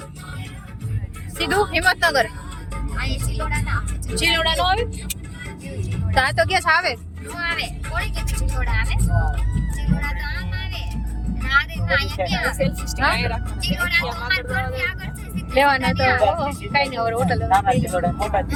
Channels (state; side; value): identical; both; correlation 1.00